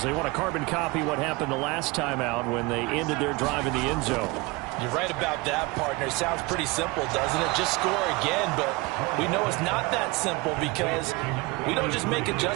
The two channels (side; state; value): left; quieter; 23.9 dB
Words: They want to carbon copy what happened the last time out when they ended their drive in the end zone. You're right about that, partner. Sounds pretty simple, doesn't it? Just score again, but we know it's not that simple because we don't just make